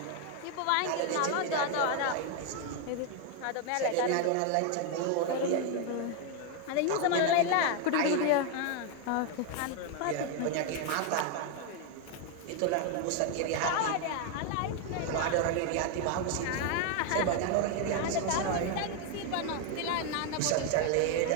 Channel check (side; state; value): both; different; correlation 0.01